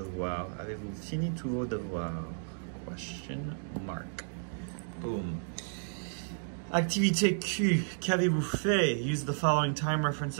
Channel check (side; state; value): left; silent; digital silence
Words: Avez-vous fini tous vos devoirs? Question mark. Boom. Activité Q, qu'avez-vous fait? Use the following time